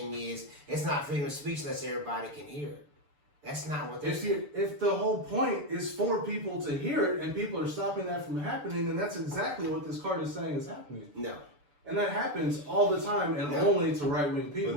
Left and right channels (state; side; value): late; left; 6.8 ms